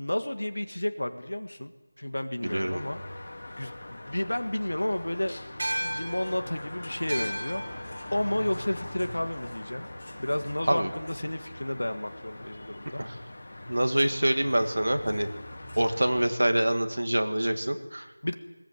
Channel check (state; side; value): inverted; both; correlation -0.99